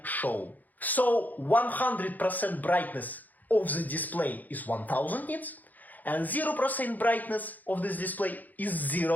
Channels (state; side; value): late; right; 0.082 ms